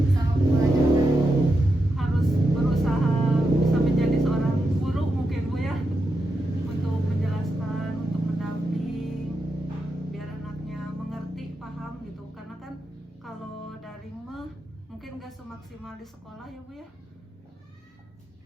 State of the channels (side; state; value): both; normal; correlation 0.86